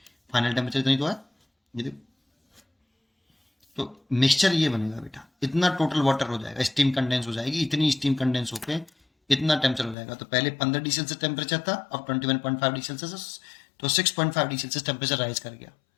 फाइनल टेम्परेचर इतनी तो है ये देखो। तो मिक्सचर ये बनेगा बेटा, इतना टोटल वाटर हो जाएगा, स्टीम कंडेंस हो जाएगी, इतनी स्टीम कंडेंस होके इतना टेम्परेचर हो जाएगा। तो पहले 15 डिग्री सेल्सियस टेम्परेचर था, अब 21.5 डिग्री सेल्सियस, तो 6.5 डिग्री सेल्सियस टेम्परेचर राइज कर गया।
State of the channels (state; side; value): drops out; right; at 10.0 s